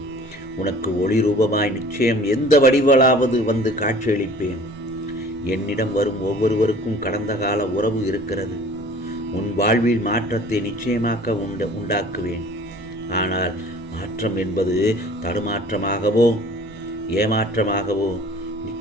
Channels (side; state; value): both; normal; correlation 0.48